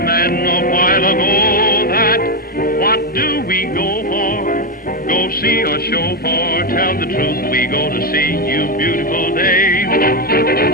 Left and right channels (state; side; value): normal; both; correlation 0.07